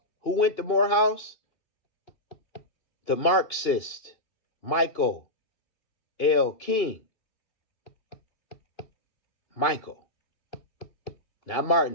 Who went to Morehouse? The Marxist Michael L. King. Michael, not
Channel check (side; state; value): right; late; 2.8 ms